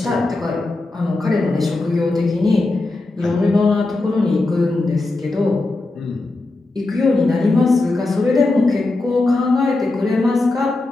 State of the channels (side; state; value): right; quieter; 3.1 dB